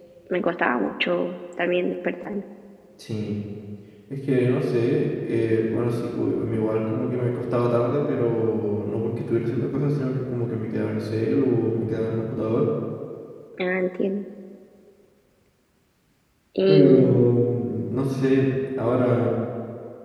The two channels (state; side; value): identical; both; correlation 1.00